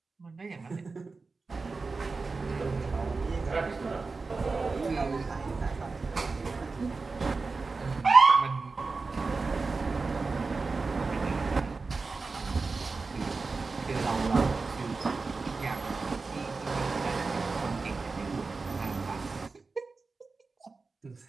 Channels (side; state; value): left; quieter; 4.1 dB